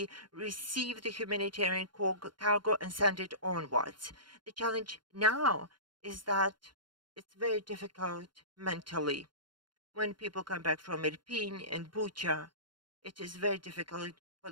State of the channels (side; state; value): left; late; 0.72 ms